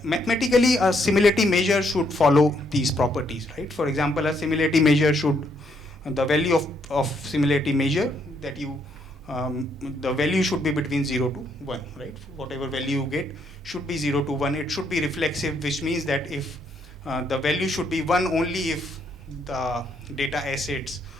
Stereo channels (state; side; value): normal; both; correlation 0.72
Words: mathematically a similarity measure should follow these properties, right? For example, a similarity measure should, the value of similarity measure that you the value should be between 0 to 1, right? Whatever value you get should be 0 to 1. It should be reflexive, which means that if the value should be 1 only if the data assets